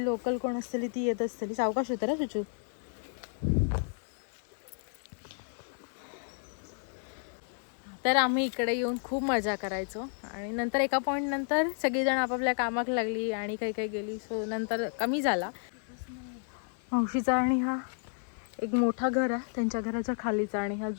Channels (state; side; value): silent; right; 57 dB below the other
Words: लोकल कोण असतली ती येत असतली. सावकाश होतं ना सुचू. तर आम्ही इकडे येऊन खूप मजा करायचो. आणि नंतर एका पॉईंट नंतर सगळीजण आपापल्या कामाक लागली आणि काही गेली. सो नंतर कमी झाला. मावशीचा आणि हा एक मोठा घर आहे, त्यांच्या घराच्या खालीचा. आणि ह्या